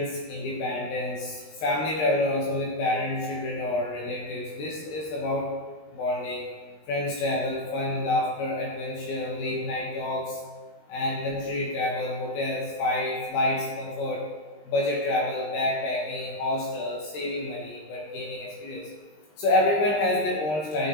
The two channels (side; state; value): right; late; 20 ms